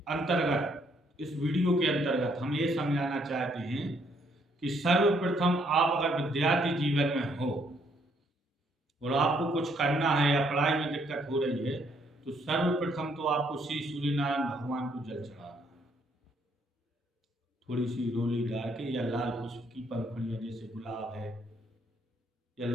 अंतर्गत, इस वीडियो के अंतर्गत हम ये समझाना चाहते हैं कि सर्वप्रथम आप अगर विद्यार्थी जीवन में हो और आपको कुछ करना है या पढ़ाई में दिक्कत हो रही है, तो सर्वप्रथम तो आपको श्री सूर्यनारायण भगवान को जल चढ़ाना है। थोड़ी सी रोली डाल के, या लाल पुष्प की पंखुड़ियाँ जैसे गुलाब है या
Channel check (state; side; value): normal; both; correlation 0.69